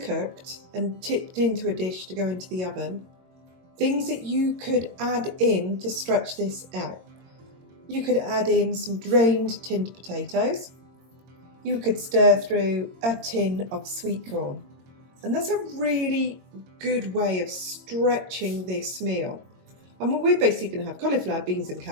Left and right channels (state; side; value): late; left; 22 ms